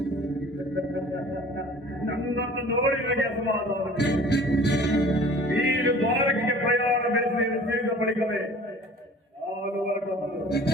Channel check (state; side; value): normal; both; correlation 0.47